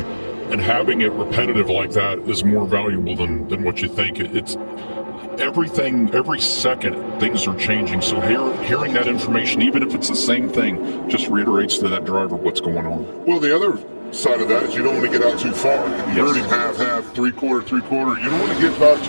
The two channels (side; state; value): both; inverted; correlation -1.00